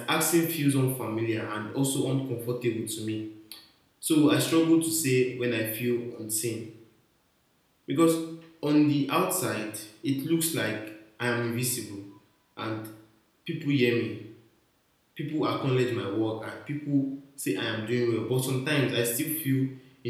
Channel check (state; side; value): identical; both; correlation 1.00